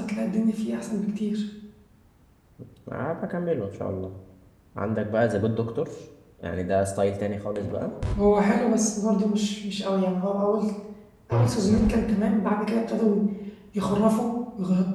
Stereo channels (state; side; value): identical; both; correlation 1.00